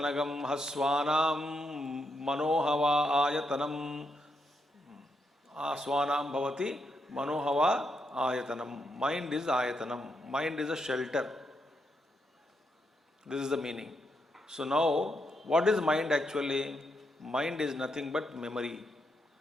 haswanam manohava ayatanam aswanam bhavati manohava ayatanam. Mind is ayatanam. Mind is a shelter. This is the meaning. So now, what is mind actually? Mind is nothing but memory.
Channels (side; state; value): both; normal; correlation 0.80